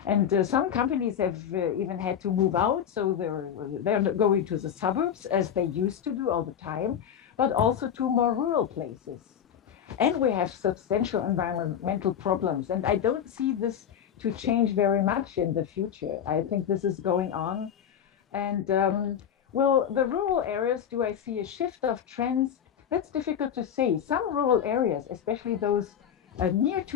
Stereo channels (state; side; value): quieter; right; 8.8 dB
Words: And some companies have even had to move out, so they're going to the suburbs as they used to do all the time, but also to more rural places. And we have substantial environmental problems. And I don't see this to change very much in the future. I think this is going on. And well, the rural areas, do I see a shift of trends? That's difficult to say. Some rural areas, especially those near